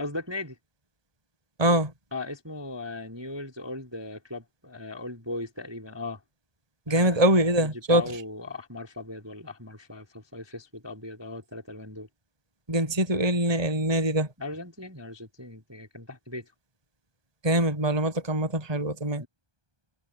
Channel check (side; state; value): left; late; 1.2 ms